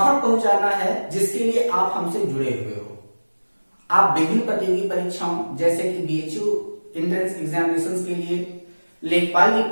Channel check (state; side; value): inverted; both; correlation -1.00